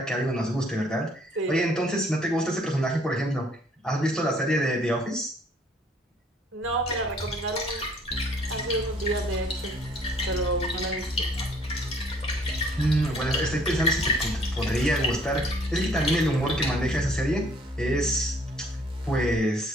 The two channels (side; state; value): both; normal; correlation 0.60